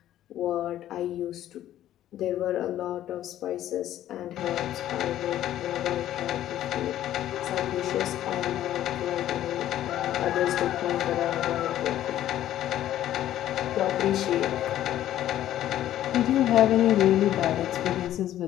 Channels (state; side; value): quieter; right; 12.5 dB